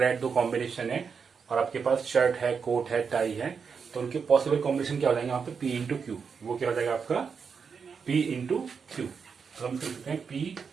रेड 2 कॉम्बिनेशन है, और आपके पास शर्ट है, कोट है, टाई है, तो उनके पॉसिबल कॉम्बिनेशन क्या हो जाएंगे यहाँ पे P इंटू क्यू, वो क्या हो जाएगा आपका P इंटू क्यू। तो हम लिख सकते हैं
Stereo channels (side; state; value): left; quieter; 5.9 dB